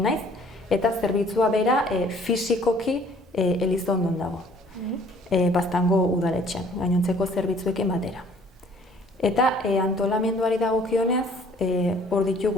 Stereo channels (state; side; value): normal; both; correlation 0.56